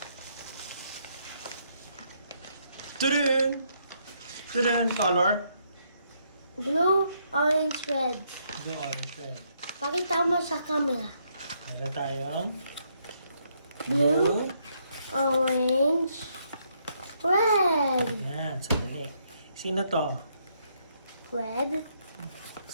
Tudun color. Blue, orange, red. Blue, orange, red. Pakita mo sa camera. Meron tayong Blue, orange, red. Yan, sandali. Sino to? Red,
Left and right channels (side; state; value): both; inverted; correlation -0.74